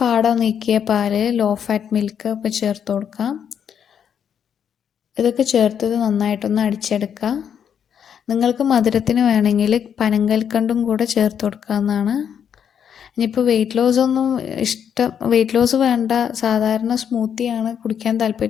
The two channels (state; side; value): quieter; right; 8.2 dB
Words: പാട നീക്കിയ പാല്, ലോ ഫാറ്റ് മിൽക്ക് ഒക്കെ ചേർത്ത് കൊടുക്കാം. ഇതൊക്കെ ചേർത്തത് നന്നായിട്ടൊന്ന് അടിച്ചെടുക്കുക. നിങ്ങൾക്ക് മധുരത്തിന് വേണമെങ്കിൽ പനങ്കൽക്കണ്ടും കൂടെ ചേർത്ത് കൊടുക്കാവുന്നതാണ്. ഇനിയിപ്പോൾ വെയിറ്റ് ലോസ് വേണ്ട, സാധാരണ സ്മൂത്തിയാണ് കുടിക്കാൻ